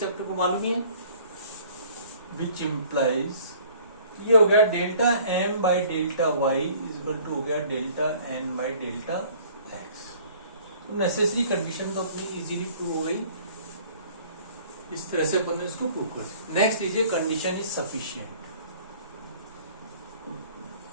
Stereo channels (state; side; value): inverted; both; correlation -0.53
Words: अपने को मालूम ही है, विच इम्प्लाइज ये हो गया delta M by delta y equal to हो गया delta N by delta x. तो नेसेसरी कंडीशन तो अपनी इजीली प्रूव हो गई, इस तरह से अपन ने इसको प्रूव कर दिया। नेक्स्ट लीजिए कंडीशन इज सफिशिएंट।